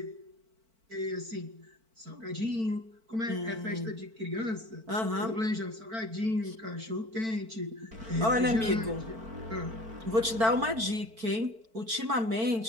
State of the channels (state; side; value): late; left; 4.5 ms